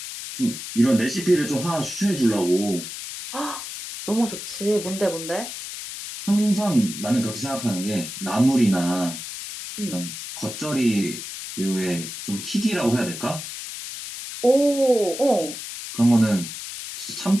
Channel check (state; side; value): noise; left; hiss, 9 dB below the sound